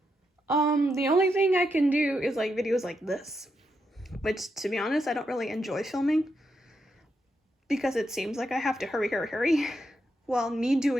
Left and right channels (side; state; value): both; normal; correlation 0.82